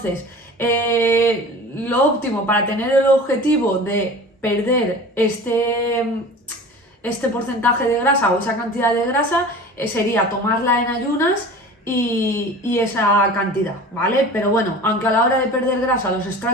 lo óptimo para tener el objetivo de perder este porcentaje de grasa o esa cantidad de grasa sería tomarla en ayunas y esa cantidad, ¿vale? Pero bueno, aunque a la hora de perder grasa los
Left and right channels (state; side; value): normal; both; correlation 0.38